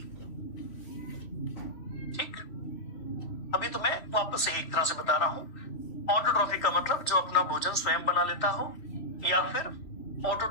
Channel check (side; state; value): right; late; 3.1 ms